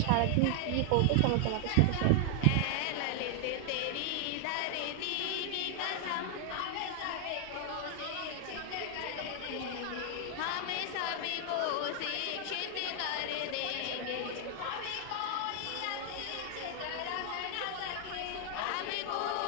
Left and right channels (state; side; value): different; both; correlation 0.00